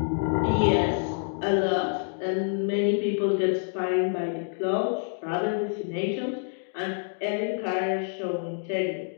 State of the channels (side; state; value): right; silent; digital silence